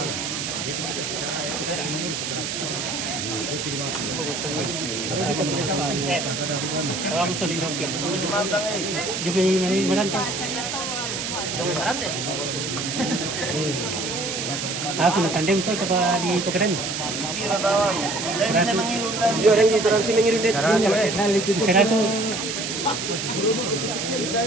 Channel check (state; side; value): noise; right; hiss, 3 dB below the sound